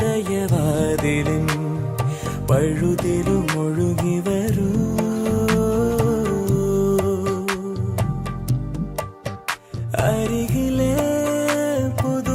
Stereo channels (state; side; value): identical; both; correlation 1.00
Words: പഴുതിലും ഒഴുകി വരൂ. അരികിലെ